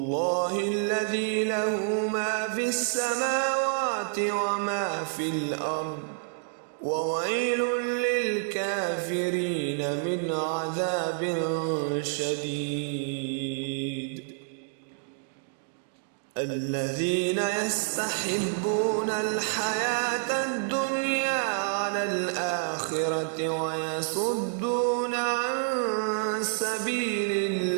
الذي له ما في السماوات وما في الأرض وويل للكافرين من عذاب شديد. الذين يستحبون الحياة الدنيا على الآخرة ويصدون عن سبيل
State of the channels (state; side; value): silent; left; digital silence